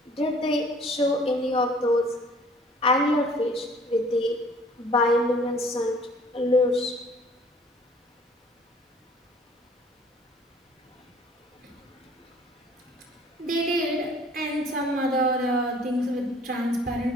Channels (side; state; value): both; normal; correlation 0.54